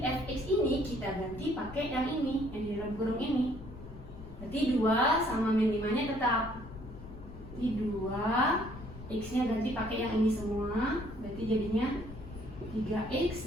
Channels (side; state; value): left; noise; rumble, 15 dB below the sound